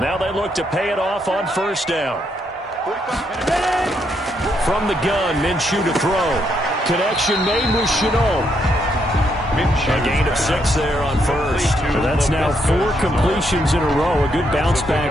Now they look to pay it off on first down. From the gun, Minshew to throw. Connection made with Chenault. A gain of 6 there on first. So that's now 4 completions in a row. A good bounce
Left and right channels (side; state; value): both; normal; correlation 0.76